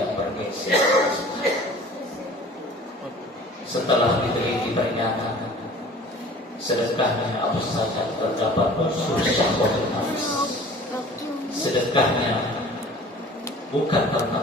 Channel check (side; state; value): both; normal; correlation 0.46